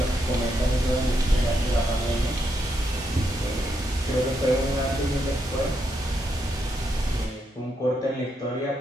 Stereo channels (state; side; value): normal; both; correlation 0.80